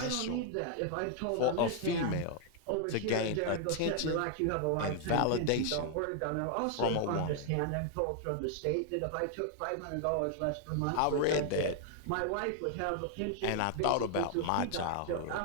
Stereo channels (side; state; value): both; different; correlation 0.00